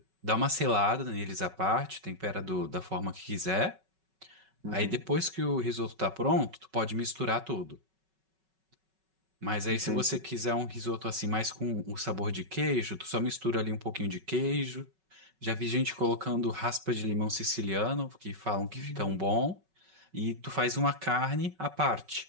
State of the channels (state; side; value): late; left; 5.3 ms